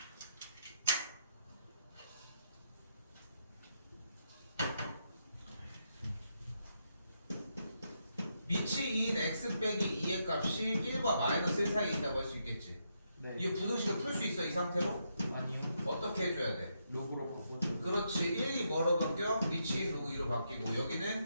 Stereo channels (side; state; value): both; inverted; correlation -0.81